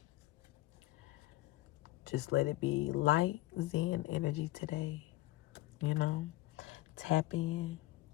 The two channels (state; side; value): quieter; right; 17.6 dB